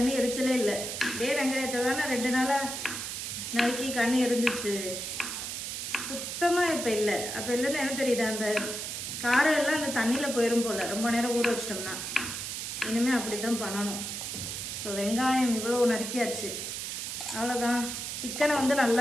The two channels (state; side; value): noise; right; hiss, 5 dB below the sound